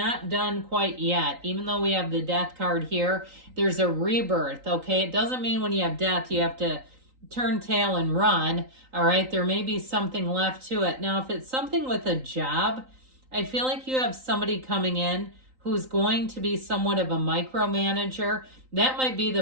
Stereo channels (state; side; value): late; left; 3.9 ms